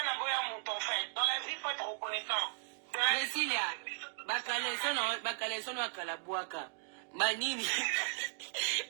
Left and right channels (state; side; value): silent; left; digital silence